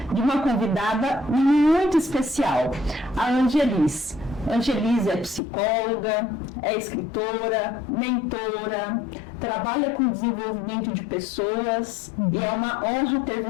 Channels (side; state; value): right; drops out; at 5.4 s